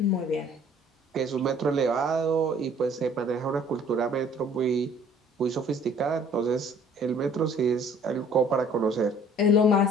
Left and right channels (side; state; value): both; normal; correlation 0.55